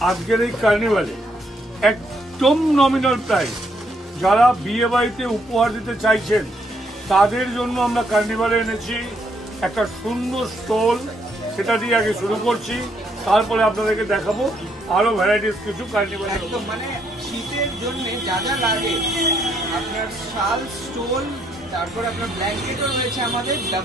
আজকের এই কার্নিভালে একদম নমিনাল প্রাইস। যারা বিয়ে বাড়িতে উপহার দিতে চাইছেন তাদের জন্য আমরা কার্নিভালে এনেছি একটা সুন্দর স্টল। সেটা দিয়ে আগে শুরু করছি, তারপরে আপনাদেরকে দেখাবো আরো ভ্যারাইটিস কিছু কার্নিভাল। একদম মানে শীতের জন্য যা যা লাগে, আপনার শাল, স্টোল, তারপর আপনার ব্ল্যাঙ্কেটও রয়েছে আমাদের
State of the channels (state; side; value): normal; both; correlation 0.72